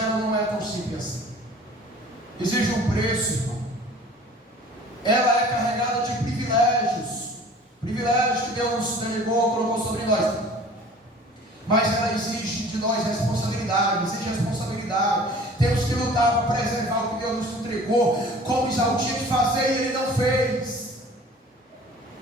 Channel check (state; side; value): normal; both; correlation 0.47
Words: não é tão simples assim. Exige um preço, irmão. Ela é carregada de privilégios que Deus nos delegou, colocou sobre nós. Mas ela exige de nós responsabilidade, Temos que lutar para preservar o que Deus nos entregou, como Isaú tinha que fazer e ele não fez.